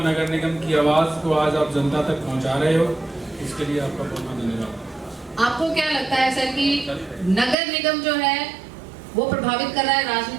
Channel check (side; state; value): left; drops out; at 7.6 s